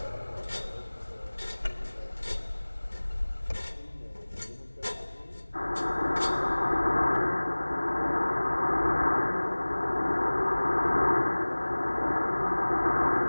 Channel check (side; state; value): both; inverted; correlation -1.00